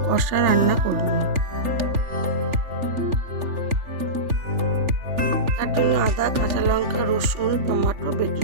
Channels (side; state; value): left; late; 3.4 ms